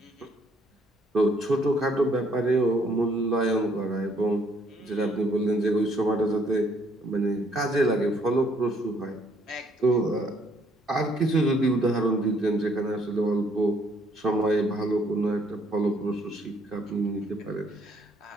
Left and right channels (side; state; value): both; normal; correlation 0.67